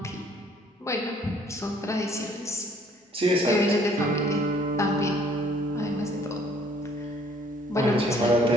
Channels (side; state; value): both; normal; correlation 0.60